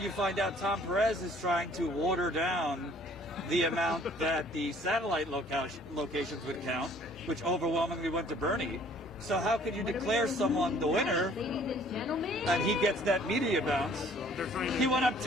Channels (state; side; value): normal; both; correlation 0.56